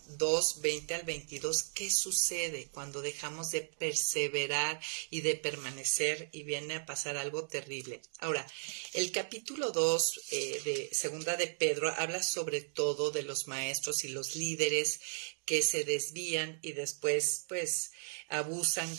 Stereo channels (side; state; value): left; silent; digital silence